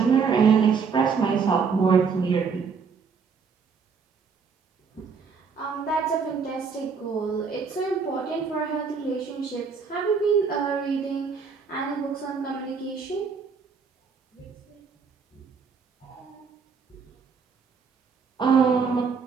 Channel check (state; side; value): quieter; left; 5.6 dB